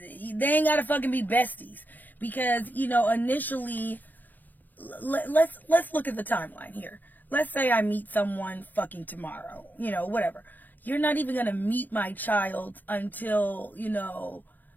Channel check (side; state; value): right; late; 0.087 ms